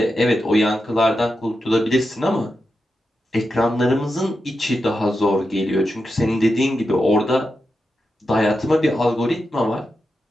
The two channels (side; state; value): both; normal; correlation 0.88